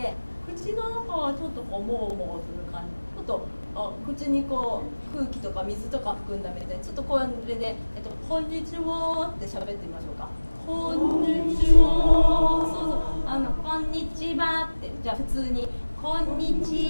口の中はちょっとこうもうもうする感じ、ちょっと口にこう空気とか水とか含んだみたいに、ちょっとこれで、こんにちはって喋ってみましょうか。こんにちは。そうそう、こんにちはって、じゃあ普通にこんに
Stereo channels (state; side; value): inverted; both; correlation -1.00